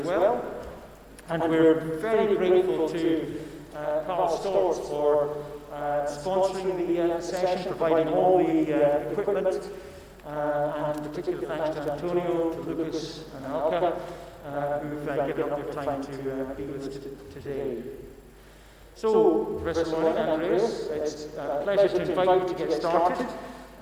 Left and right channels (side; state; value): both; identical; correlation 1.00